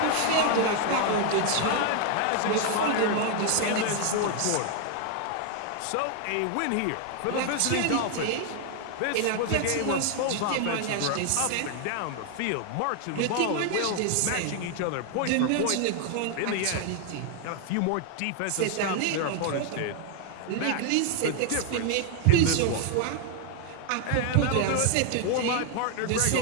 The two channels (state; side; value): different; both; correlation 0.00